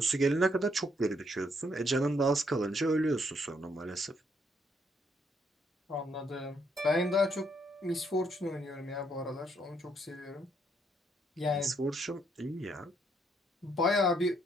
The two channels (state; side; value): normal; both; correlation 0.72